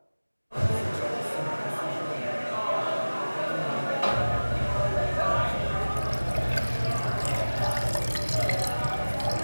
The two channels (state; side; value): inverted; both; correlation -1.00